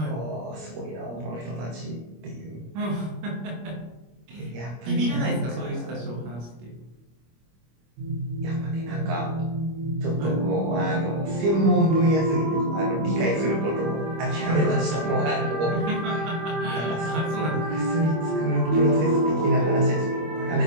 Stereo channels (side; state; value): left; late; 25 ms